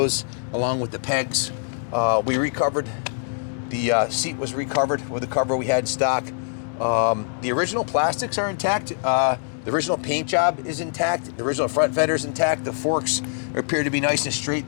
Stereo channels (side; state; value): right; silent; digital silence